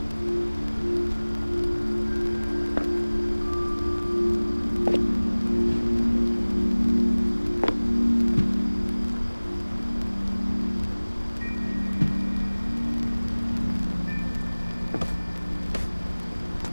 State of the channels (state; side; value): inverted; both; correlation -1.00